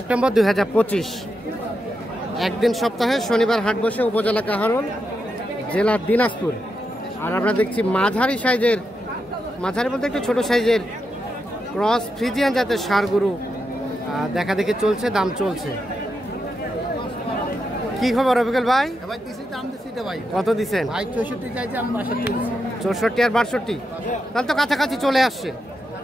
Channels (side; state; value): both; normal; correlation 0.85